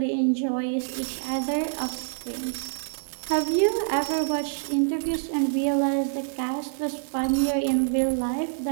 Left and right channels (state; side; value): silent; left; 61 dB below the other